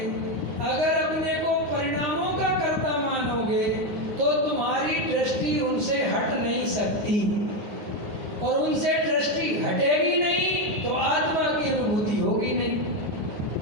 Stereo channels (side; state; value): left; late; 9.6 ms